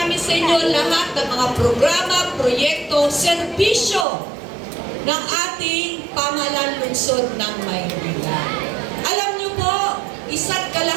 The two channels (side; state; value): left; drops out; at 4.0 s